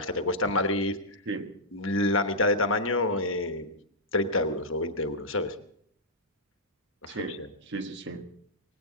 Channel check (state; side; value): normal; both; correlation -0.10